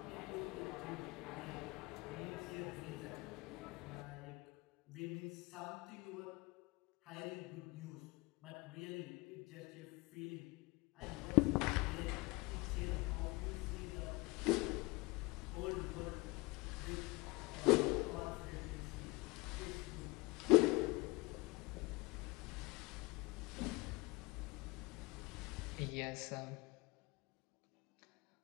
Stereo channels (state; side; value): quieter; right; 24.5 dB